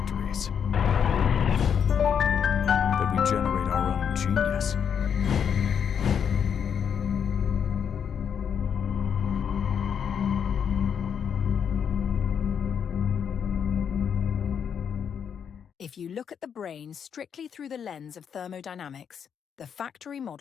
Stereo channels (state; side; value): quieter; right; 7.6 dB